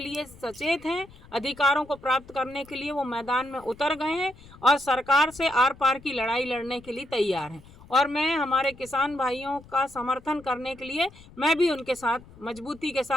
सचेत हैं, अधिकारों को प्राप्त करने के लिए वो मैदान में उतर गए हैं और सरकार से आर पार की लड़ाई लड़ने के लिए तैयार हैं। और मैं हमारे किसान भाइयों का समर्थन करने के लिए मैं भी उनके साथ मजबूती के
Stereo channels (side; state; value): left; noise; rumble, 22 dB below the sound